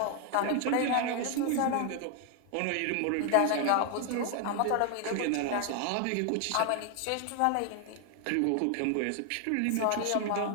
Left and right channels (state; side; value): different; both; correlation 0.00